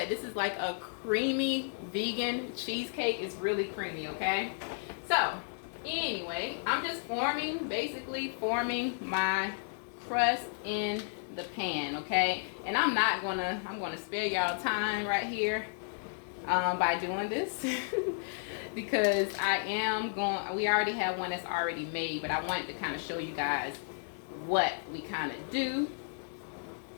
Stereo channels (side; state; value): right; silent; digital silence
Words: this is like a creamy vegan cheesecake, it's really creamy, okay? So anyway, I'm just basically forming my crust in the pan, okay? And I'm gonna spare y'all time right here by doing this because we already have one that's already made, but I wanted to kind of show you guys what we kind of do